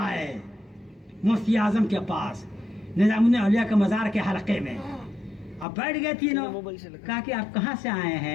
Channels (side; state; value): right; drops out; at 5.7 s